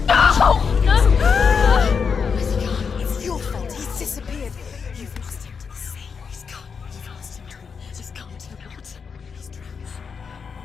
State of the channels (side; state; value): right; quieter; 5.9 dB